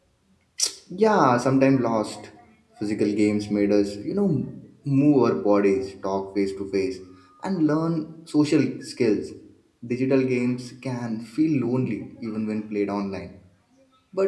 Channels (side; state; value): both; identical; correlation 1.00